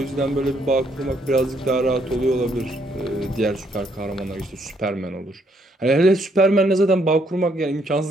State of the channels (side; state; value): both; normal; correlation 0.71